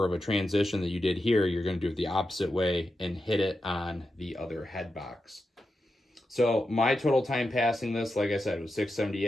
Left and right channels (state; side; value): normal; both; correlation 0.88